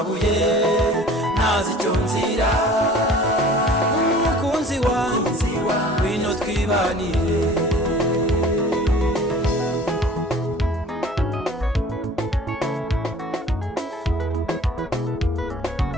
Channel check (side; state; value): both; normal; correlation 0.47